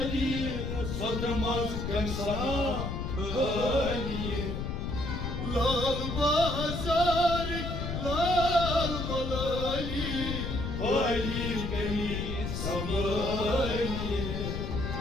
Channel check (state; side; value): noise; left; rumble, 3 dB below the sound